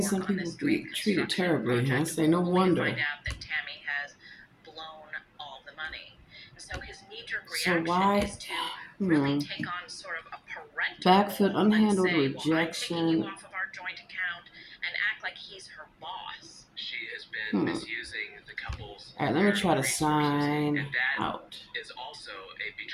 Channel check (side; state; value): both; identical; correlation 1.00